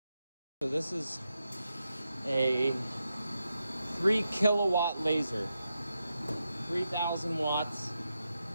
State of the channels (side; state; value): both; inverted; correlation -0.87